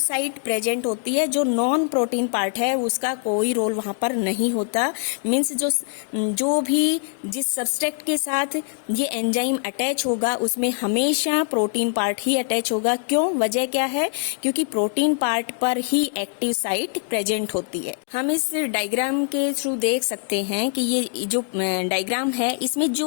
प्रेजेंट होती है, जो नॉन प्रोटीन पार्ट है उसका कोई रोल वहाँ पर नहीं होता। मीन्स जो भी जिस सब्सट्रेट के साथ ये एंजाइम अटैच होगा उसमें हमेशा प्रोटीन पार्ट ही अटैच होगा। क्यों, वजह क्या है, क्योंकि प्रोटीन पार्ट पर ही एक्टिव साइट प्रेजेंट होती है। हम इस डायग्राम के थ्रू देख सकते हैं कि ये जो डायग्राम है इसमें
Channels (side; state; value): right; silent; 56 dB below the other